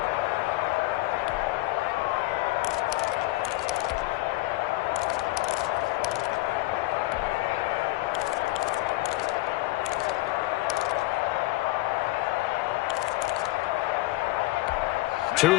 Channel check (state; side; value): quieter; right; 19.7 dB